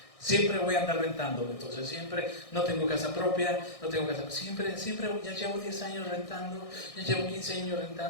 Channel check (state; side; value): late; right; 1.6 ms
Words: Siempre voy a andar rentando, entonces siempre no tengo casa propia, siempre ya llevo 10 años rentando, ya llevo 15 años